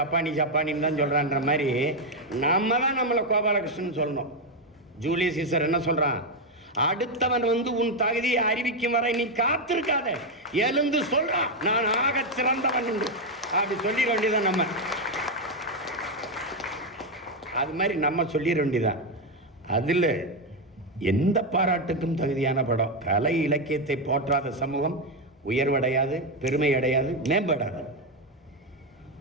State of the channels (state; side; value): normal; both; correlation 0.05